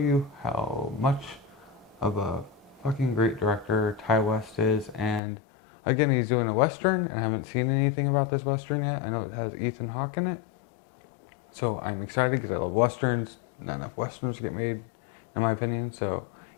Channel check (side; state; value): right; drops out; at 5.2 s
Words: how much of a fucking great director Ty West is. And again, he's doing a Western, and I haven't seen anything about this Western yet. I know it has Ethan Hawke in it. So I'm excited because I love Westerns. Not enough Westerns get made, in my opinion. So